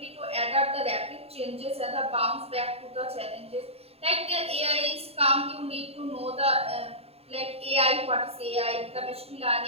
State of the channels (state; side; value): late; left; 0.29 ms